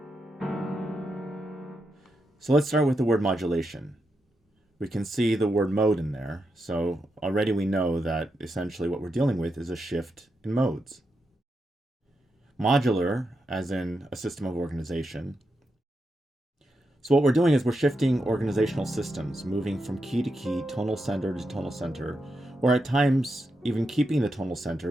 So let's start with the word modulation. We can see the word mode in there, so already we know that essentially what we're dealing with is a shift in modes. Modular, as in a system of organization. So what we're doing is we're shifting organizational systems, moving from key to key, tonal center to tonal center, or at times even keeping the tonal center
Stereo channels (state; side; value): normal; both; correlation 0.85